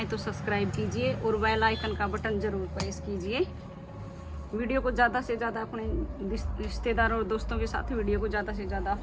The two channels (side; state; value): both; identical; correlation 1.00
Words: तो सब्सक्राइब कीजिए और बेल आइकन का बटन ज़रूर प्रेस कीजिए। वीडियो को ज़्यादा से ज़्यादा अपने रिश्तेदारों और दोस्तों के साथ वीडियो को ज़्यादा से ज़्यादा आप